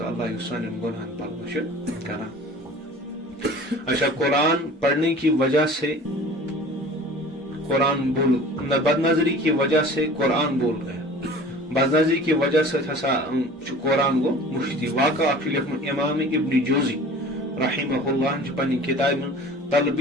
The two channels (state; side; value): normal; both; correlation 0.43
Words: اللہ یسان گناہن پر بخش کرا. اچھا, قرآن پڑھنے کی وجہ سے قرآن بول, بد نظری کی وجہ سے قرآن بول گیا. بد نظری کی وجہ سے ہسا قرآن گو مشتی. واقعہ لکھن امام ابن جوزی رحمہ اللہ پنہ کتاب